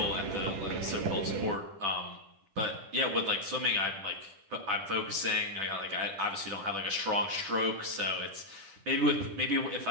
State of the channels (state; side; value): late; left; 10 ms